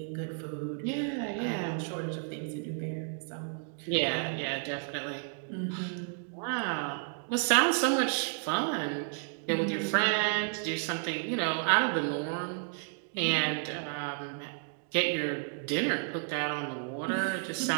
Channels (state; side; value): silent; left; 56 dB below the other